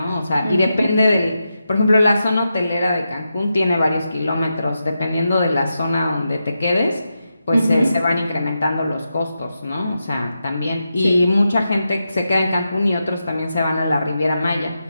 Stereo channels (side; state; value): both; inverted; correlation -0.88